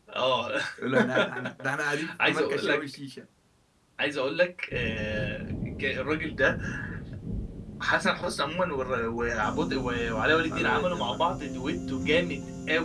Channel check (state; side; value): identical; both; correlation 1.00